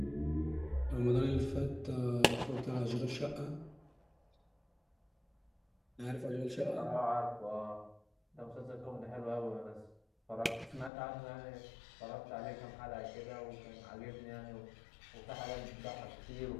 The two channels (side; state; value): right; drops out; at 10.9 s